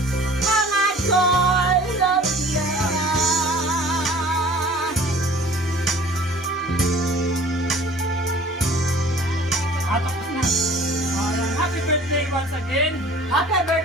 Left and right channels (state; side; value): normal; both; correlation 0.48